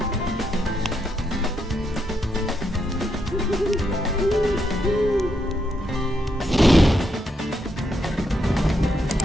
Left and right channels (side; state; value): both; normal; correlation 0.79